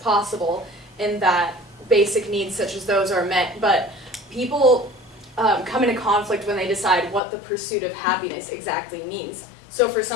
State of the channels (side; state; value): right; drops out; at 7.2 s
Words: and that basic needs such as those are met. But people come into conflict when they decide what the pursuit of happiness exactly means. So for